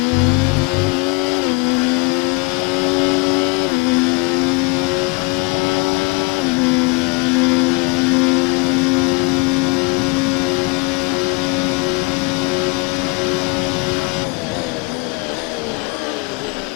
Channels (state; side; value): quieter; right; 28.6 dB